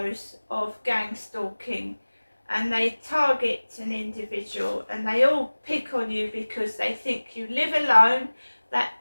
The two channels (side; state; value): both; inverted; correlation -1.00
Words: of gang stalking, and they target an individual and they all pick on you because they think you live alone. That